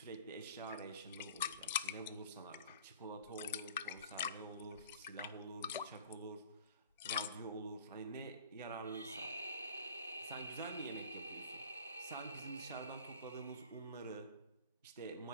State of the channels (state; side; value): inverted; both; correlation -0.45